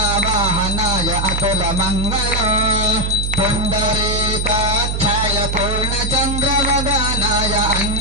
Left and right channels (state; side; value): noise; right; hum, 1 dB below the sound